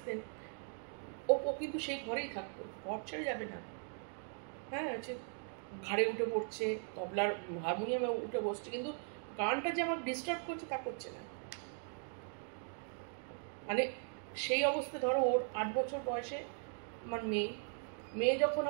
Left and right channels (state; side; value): silent; left; 52 dB below the other